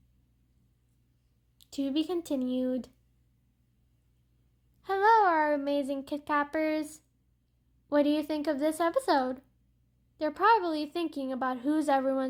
To be continued. Hello, our amazing Kit Cappers. What do you think of this episode? They're probably thinking about who's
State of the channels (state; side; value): identical; both; correlation 1.00